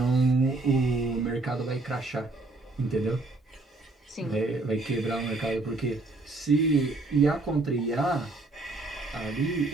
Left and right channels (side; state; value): left; quieter; 3.2 dB